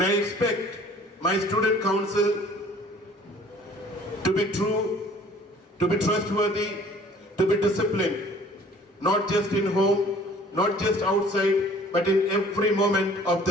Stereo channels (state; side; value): normal; both; correlation 0.52